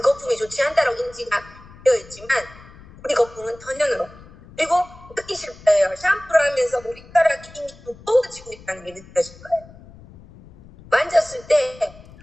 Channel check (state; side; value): noise; left; rumble, 21 dB below the sound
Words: 거품이 좋지 않다라고 인지가 되어 있지만 우리 거품은 천연으로. 그리고 느끼실 거예요. 샴푸를 하면서 머리카락이 이미 두꺼워지고 있다는 게 느껴질 거예요. 만졌을 때